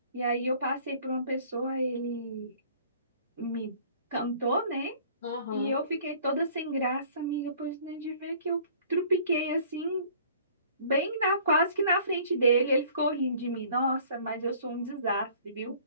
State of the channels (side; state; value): both; inverted; correlation -0.53